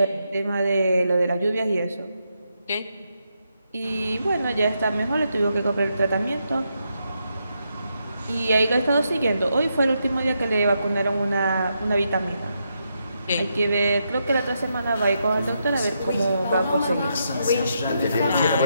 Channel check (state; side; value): inverted; both; correlation -0.82